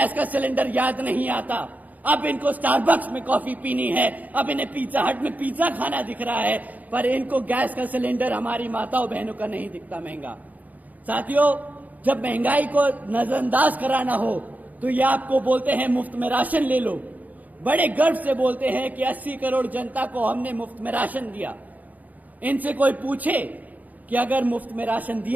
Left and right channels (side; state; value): left; late; 0.079 ms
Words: का सिलेंडर याद नहीं आता, अब इनको स्टारबक्स में कॉफी पीनी है, अब इन्हें पिज्जा हट में पिज्जा खाना दिख रहा है, पर इनको गैस का सिलेंडर हमारी माताओं बहनों का नहीं दिखता महंगा। साथियों, जब महंगाई को नजरअंदाज कराना हो तो ये आपको बोलते हैं मुफ्त में राशन ले लो, बड़े गर्व से बोलते हैं कि 80 करोड़ जनता को हमने मुफ्त में राशन दिया। इनसे कोई पूछे कि अगर मुफ्त में राशन